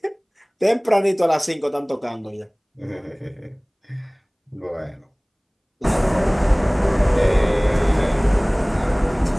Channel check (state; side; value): identical; both; correlation 1.00